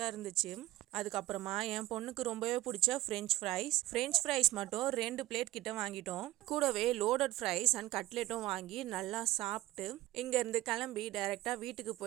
இருந்துச்சு. அதுக்கப்புறமா என் பொண்ணுக்கு ரொம்பவே பிடிச்ச ஃப்ரெஞ்ச் ஃப்ரைஸ் மட்டும் 2 பிளேட் கிட்ட வாங்கிட்டோம். கூடவே லோடட் ஃப்ரைஸ் அண்ட் கட்லெட்டும் வாங்கி நல்லா சாப்பிட்டு இங்கேருந்து கிளம்பி டைரெக்டாக வீட்டுக்கு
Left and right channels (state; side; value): quieter; left; 16.8 dB